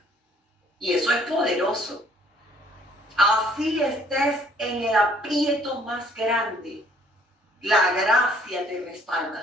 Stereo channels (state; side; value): normal; both; correlation 0.61